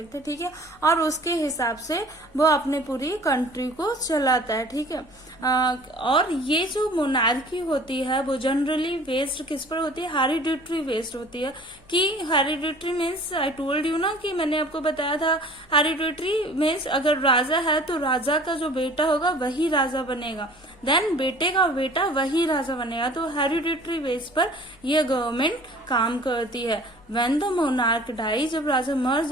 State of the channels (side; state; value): left; noise; hum, 28 dB below the sound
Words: है. ठीक है, और उसके हिसाब से वो अपने पूरी कंट्री को चलाता है. ठीक है, और ये जो मोनार्की होती है वो जनरली बेस्ड किस पर होती है, हेरिडिटरी बेस्ड होती है. कि hereditary means I told you ना, कि मैंने आपको बताया था हेरिडिटरी मीन्स अगर राजा है तो राजा का जो बेटा होगा वही राजा बनेगा, देन बेटे का बेटा वही राजा बनेगा. तो हेरिडिटरी बेस पर यह गवर्नमेंट काम करती है. व्हेन द मोनार्क डाई, जब राजा मर